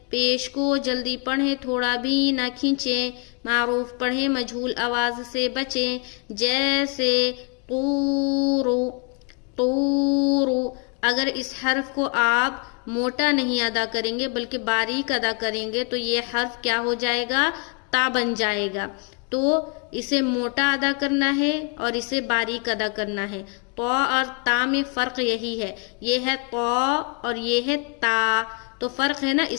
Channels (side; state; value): right; quieter; 36.5 dB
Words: پیش کو جلدی پڑھیں، تھوڑا بھی نہ کھینچیں. معروف پڑھیں، مجہول آواز سے بچیں. جیسے طورو، طورو. اگر اس حرف کو آپ موٹا نہیں ادا کریں گے بلکہ باریک ادا کریں گے تو یہ حرف کیا ہو جائے گا؟ تا بن جائے گا. تو اسے موٹا ادا کرنا ہے اور اسے باریک ادا کرنا ہے. تو اور تا میں فرق یہی ہے. یہ ہے تو اور یہ ہے تا. تو فرق ہے نا،